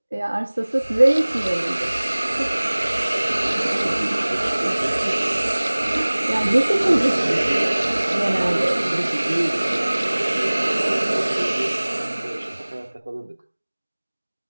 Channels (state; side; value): inverted; both; correlation -1.00